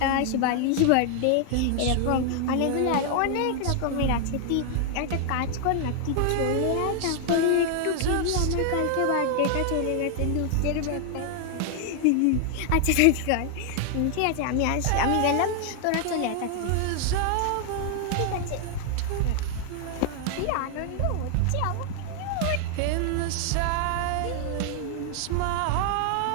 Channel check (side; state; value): both; different; correlation 0.00